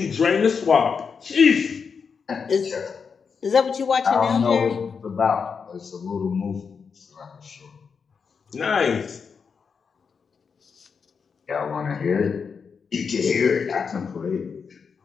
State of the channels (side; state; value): right; quieter; 5.9 dB